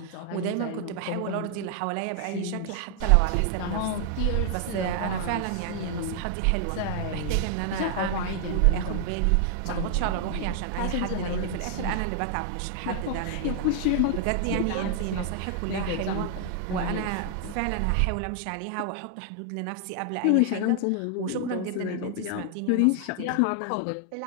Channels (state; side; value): different; both; correlation 0.00